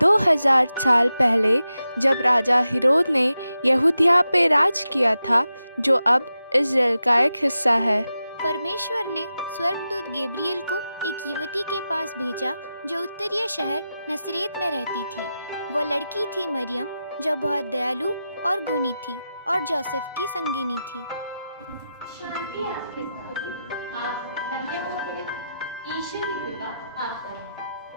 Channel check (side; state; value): both; inverted; correlation -0.90